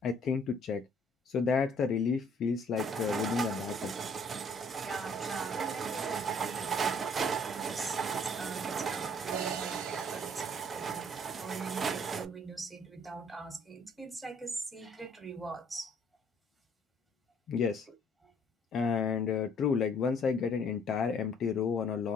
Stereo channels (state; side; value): normal; both; correlation 0.61